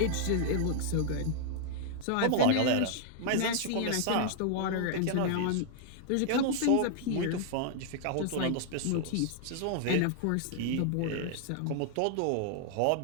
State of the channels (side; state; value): both; different; correlation 0.00